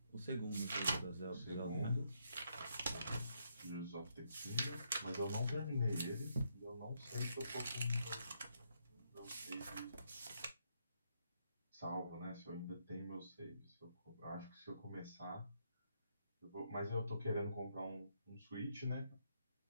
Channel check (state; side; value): inverted; both; correlation -0.76